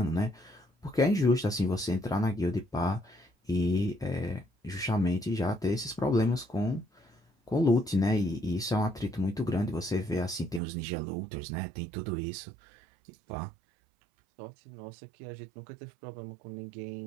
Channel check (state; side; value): drops out; left; at 10.6 s